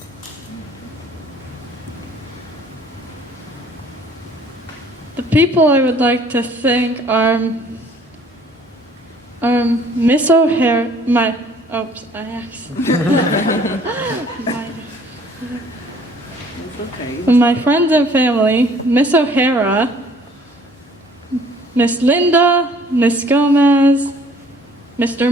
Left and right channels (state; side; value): normal; both; correlation 0.56